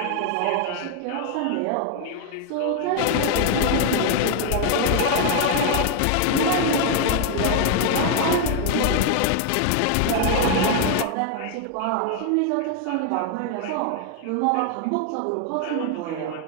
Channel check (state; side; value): different; both; correlation 0.00